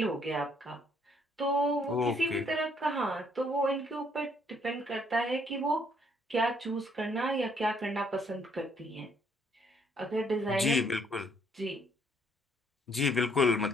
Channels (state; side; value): normal; both; correlation 0.67